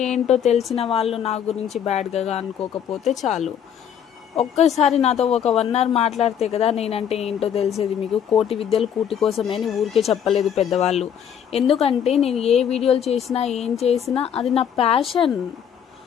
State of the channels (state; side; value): quieter; right; 8.6 dB